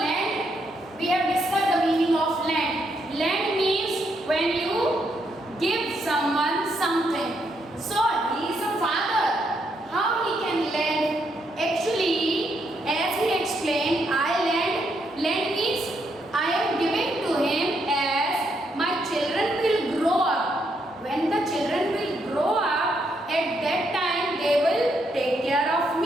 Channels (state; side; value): normal; both; correlation 0.77